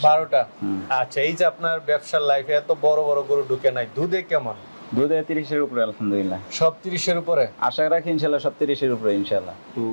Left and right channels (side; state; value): both; inverted; correlation -1.00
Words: 12টা। আচ্ছা, এই যে আপনার ব্যবসার লাইফে এত বড় বড় গরু ঢুকে নাই, দুধে কেমন? দুধে 30-এর উপরে আলহামদুলিল্লাহ। সব 30-এর উপরে আশা রাখি ইনশাআল্লাহ, সব 30-এর উপরে ইনশাআল্লাহ। তো